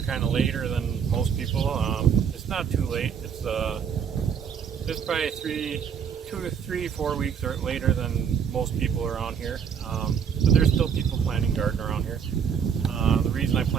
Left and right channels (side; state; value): left; quieter; 7.4 dB